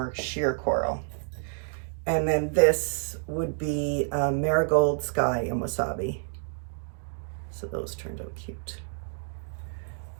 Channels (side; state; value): left; silent; digital silence